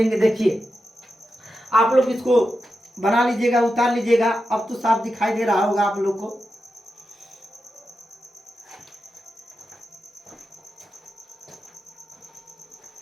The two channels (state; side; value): normal; both; correlation 0.89